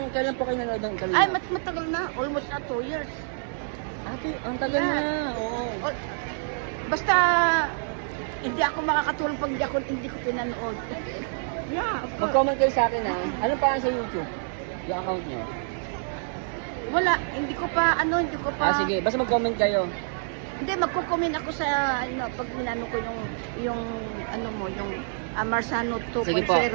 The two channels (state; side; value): silent; left; digital silence